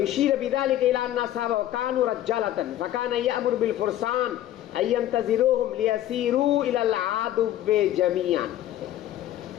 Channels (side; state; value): right; quieter; 12.9 dB